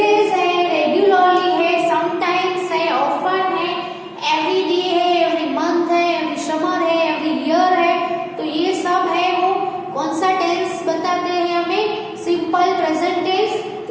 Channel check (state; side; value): identical; both; correlation 1.00